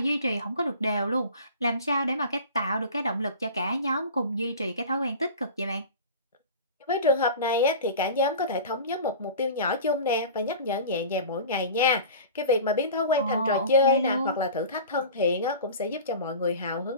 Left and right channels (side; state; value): both; inverted; correlation -0.37